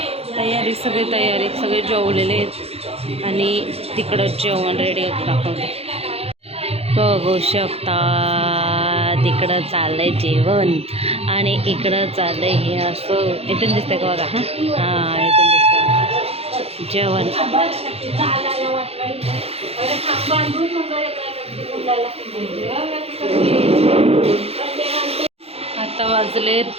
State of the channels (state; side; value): late; left; 0.29 ms